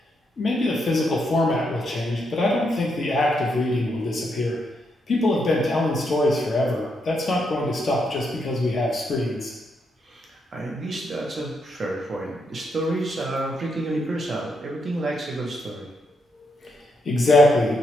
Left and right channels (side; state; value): both; normal; correlation 0.79